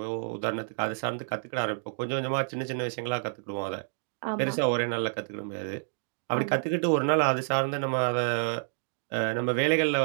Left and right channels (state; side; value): silent; left; digital silence